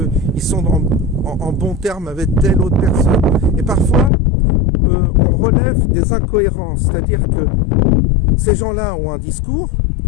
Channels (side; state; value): right; drops out; at 4.1 s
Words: sont en bon terme avec telle autre personne. Et parfois, on relève des incohérences, c'est-à-dire que ces gens-là ont un discours,